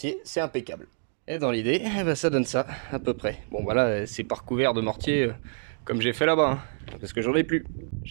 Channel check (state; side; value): silent; left; digital silence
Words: c'est impeccable. Et dans l'idée, ça donne ça, à peu près. Bon voilà, c'est pas recouvert de mortier comme j'ai fait là-bas, hein, parce que j'en ai plus.